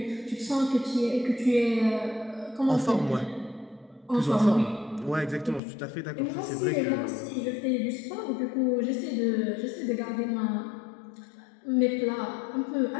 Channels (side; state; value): right; drops out; at 5.6 s